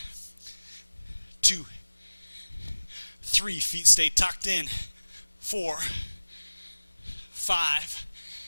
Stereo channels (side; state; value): both; inverted; correlation -1.00